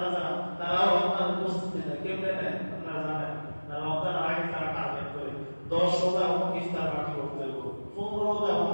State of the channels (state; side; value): inverted; both; correlation -1.00